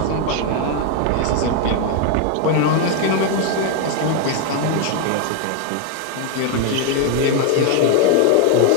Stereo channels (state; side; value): different; both; correlation 0.00